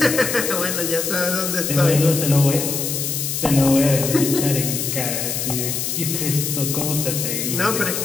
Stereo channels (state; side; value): noise; left; hiss, 2 dB below the sound